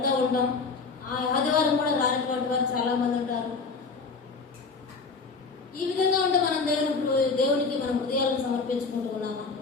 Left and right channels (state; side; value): quieter; right; 4.5 dB